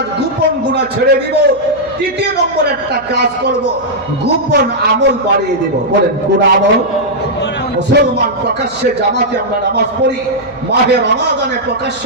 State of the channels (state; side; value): noise; right; hum, 25 dB below the sound